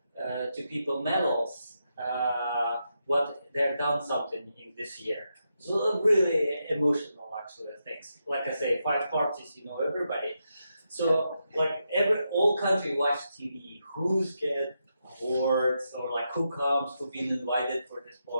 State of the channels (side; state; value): both; inverted; correlation -0.85